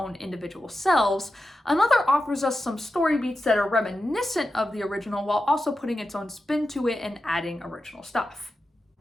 individual selves, another offers us some story beats that are reminiscent of the original while also putting its own spin to it and adding original stuff.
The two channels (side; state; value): both; normal; correlation 0.91